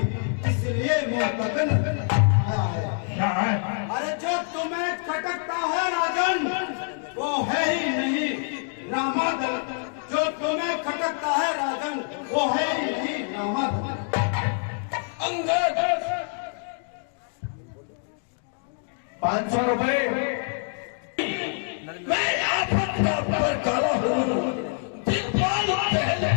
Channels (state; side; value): silent; right; 59 dB below the other